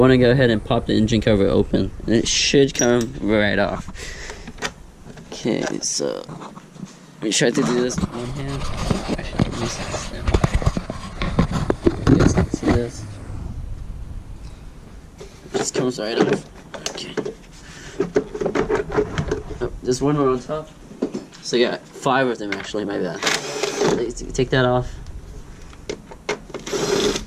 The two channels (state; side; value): identical; both; correlation 1.00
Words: to go ahead and pop the engine cover open, and it should come right off. Okay, so let me try to do this with one hand. Actually, let me see this now. You guys can see this. It just comes right off. Okay. Oh, there's one more on top. So you got 5 of them actually, my bad. Take that off.